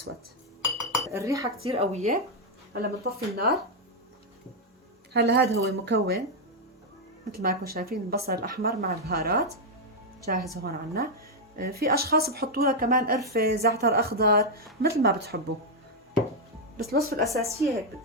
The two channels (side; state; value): both; normal; correlation 0.00